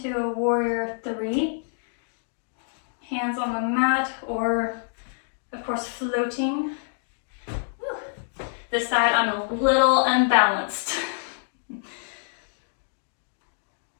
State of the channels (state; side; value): silent; right; digital silence